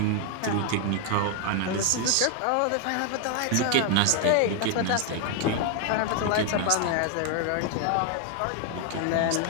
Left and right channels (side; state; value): both; different; correlation 0.01